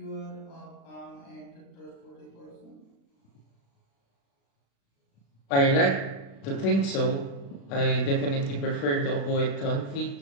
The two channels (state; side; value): late; right; 36 ms